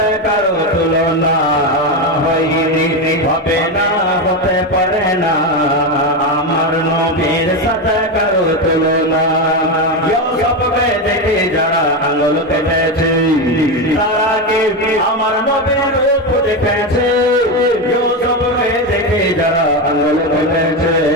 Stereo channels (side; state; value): both; normal; correlation 0.13